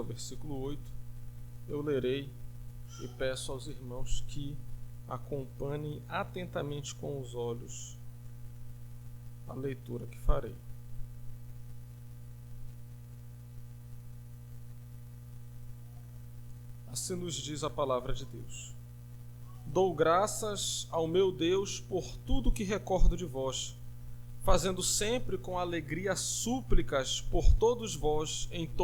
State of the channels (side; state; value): both; identical; correlation 1.00